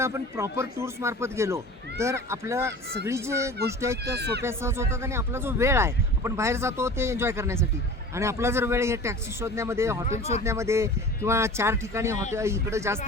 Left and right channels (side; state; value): both; normal; correlation 0.39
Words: आपण प्रॉपर टूर्स मार्फत गेलो तर आपलं सगळी जे गोष्टी आहेत त्या सोप्या सहज होतात आणि आपला जो वेळ आहे आपण बाहेर जातो ते एन्जॉय करण्यासाठी आणि आपला जर वेळ हे टॅक्सी शोधण्यामध्ये, हॉटेल शोधण्यामध्ये किंवा 4 ठिकाणी हॉटेल इकडं जास्त